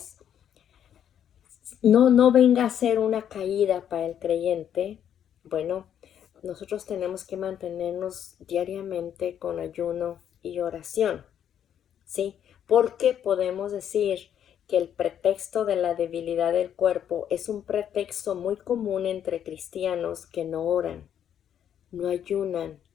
no venga a ser una caída para el creyente? Bueno, nosotros tenemos que mantenernos diariamente con ayuno y oración, ¿sí? Porque podemos decir que el pretexto de la debilidad del cuerpo es un pretexto muy común entre cristianos que no oran, no ayunan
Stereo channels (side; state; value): right; quieter; 9.5 dB